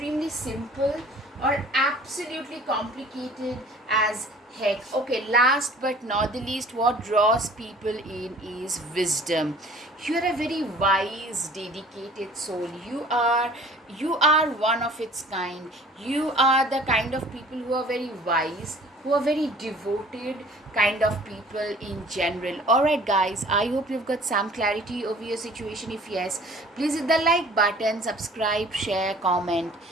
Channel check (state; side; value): normal; both; correlation 0.49